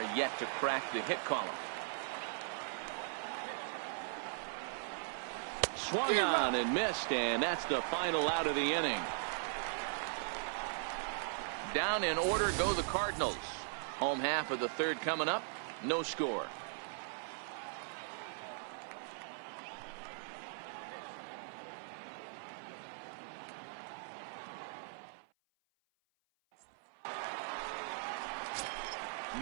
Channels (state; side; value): silent; left; 52 dB below the other